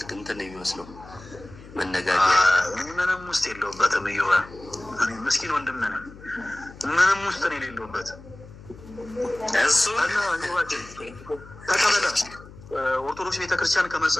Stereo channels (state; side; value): noise; left; hum, 18 dB below the sound